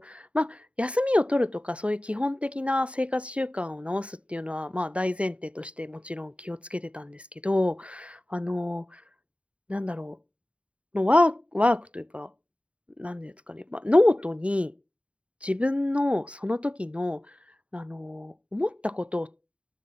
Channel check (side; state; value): left; late; 0.062 ms